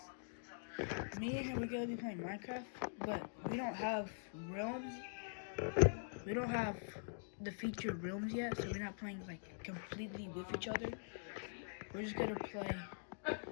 Me and him, we're gonna be playing Minecraft, but we don't have realms. We don't have the featured realms yet, so we're not playing like completely with each other. We're just gonna play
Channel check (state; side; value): silent; right; digital silence